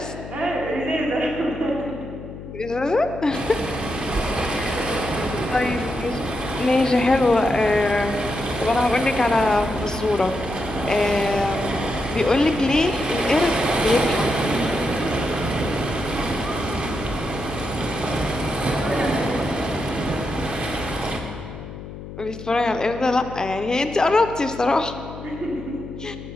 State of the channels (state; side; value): noise; left; hum, 12 dB below the sound